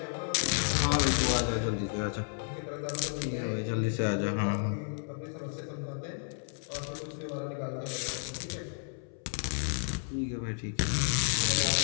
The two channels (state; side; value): silent; right; 56 dB below the other